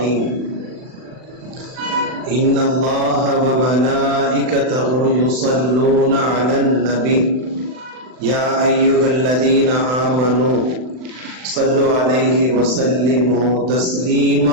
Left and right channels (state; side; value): late; left; 39 ms